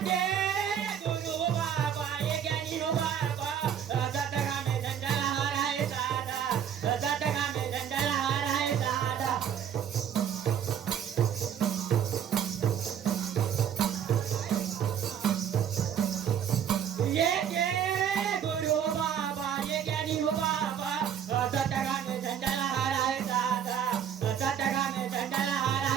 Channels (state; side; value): quieter; left; 8.7 dB